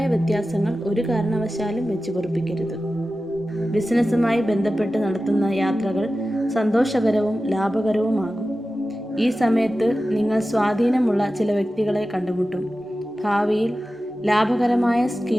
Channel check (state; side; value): normal; both; correlation 0.94